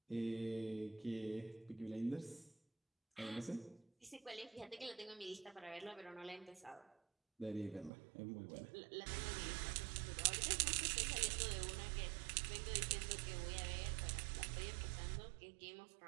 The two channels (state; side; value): drops out; left; at 7.9 s